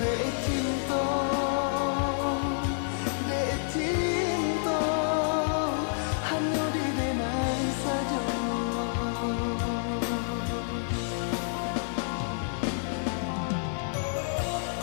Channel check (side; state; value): right; silent; 59 dB below the other